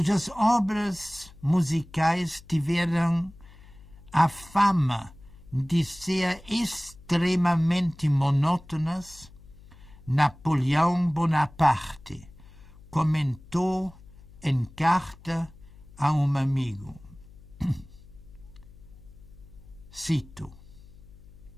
obras musicais tiveram a fama de ser extremamente monótonas, Napoleão Bonaparte comentou em carta a um amigo. Cito:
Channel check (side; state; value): left; noise; hum, 21 dB below the sound